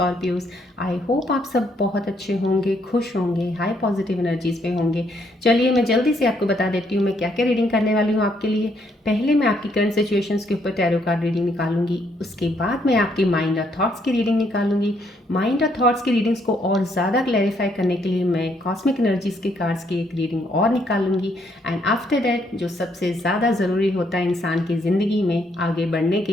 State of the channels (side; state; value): both; normal; correlation 0.71